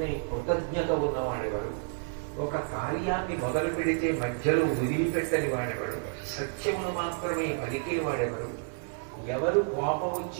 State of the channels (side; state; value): left; silent; digital silence